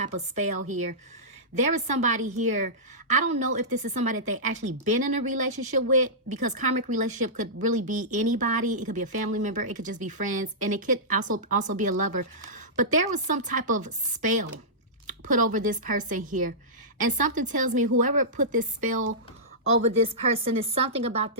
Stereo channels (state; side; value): normal; both; correlation -0.16